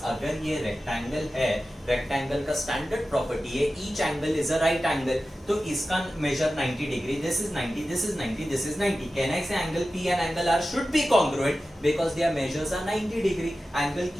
अगर ये rectangle है, rectangle का standard property है, each angle is a right angle. तो इसका measure 90 degree. This is 90, this is 90, this is 90. Can I say angle P and angle R should be congruent because their measures are 90 degree. Angle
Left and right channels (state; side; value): normal; both; correlation 0.94